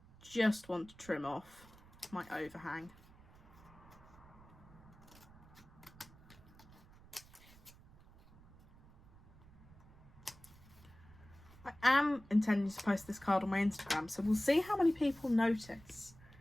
Just want to trim off my overhang. I am intending to post this card on my Instagram, so we'll see how many people notice.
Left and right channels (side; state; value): right; noise; rumble, 22 dB below the sound